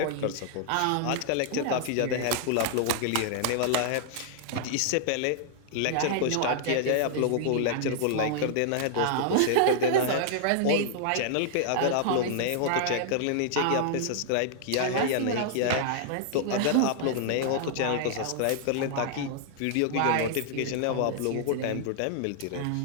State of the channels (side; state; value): both; different; correlation -0.01